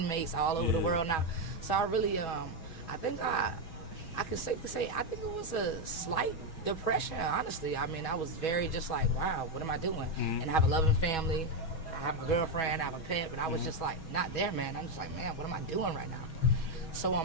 all over the world now. So I really, I think I could safely say, I think it was a slight depression, honestly. I mean, I was very just like, wow, what am I doing? And I have a loving family, I have a girlfriend, I have a pet, but I was just like, not there, man. I'm just like, man, what am I doing right now? So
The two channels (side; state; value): right; late; 6.2 ms